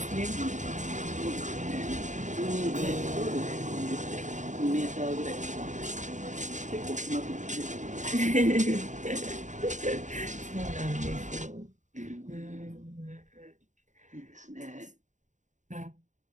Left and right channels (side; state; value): left; late; 0.36 ms